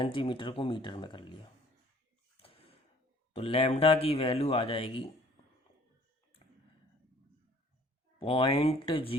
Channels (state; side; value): normal; both; correlation 0.55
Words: को मीटर में कर लिया, तो लैम्डा की वैल्यू आ जाएगी